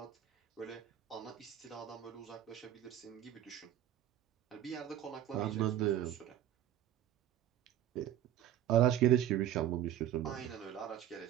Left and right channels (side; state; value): left; quieter; 11.6 dB